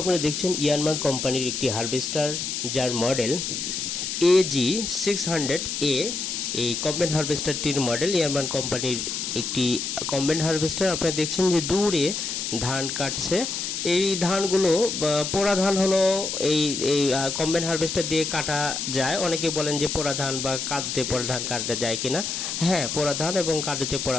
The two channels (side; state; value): left; noise; hiss, 3 dB below the sound